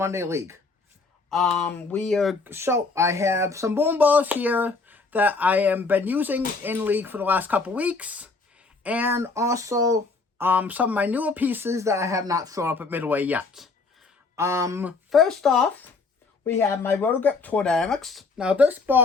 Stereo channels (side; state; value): right; quieter; 4.0 dB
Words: League. I have some bowling balls here that I have been using in League for the last couple weeks, and also some of my newer pieces that I have not thrown up at Midway yet. First off, we have my Rotogrip Tour Dynamics. Now this